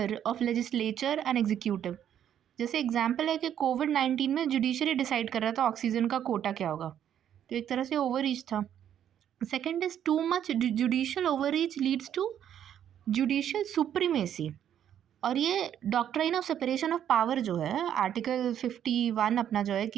of legislature and executive. जैसे एग्जाम्पल है कि कोविड-19 में जुडिशरी डिसाइड कर रहा था ऑक्सीजन का कोटा क्या होगा, तो एक तरह से ओवररीच था. Second is too much judicial overreach leads to judicial supremacy. और ये doctrine of separation of power जो है, आर्टिकल 51 अपना जो है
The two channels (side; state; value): left; quieter; 9.9 dB